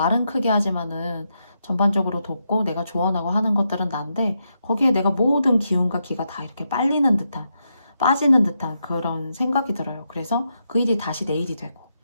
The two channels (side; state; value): both; inverted; correlation -0.83